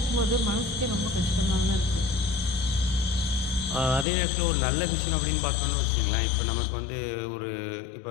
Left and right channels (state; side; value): drops out; right; at 4.0 s